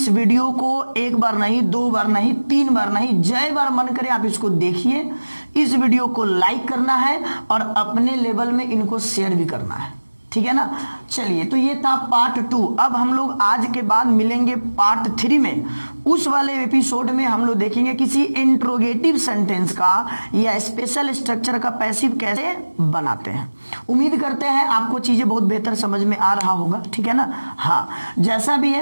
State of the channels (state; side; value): inverted; both; correlation -1.00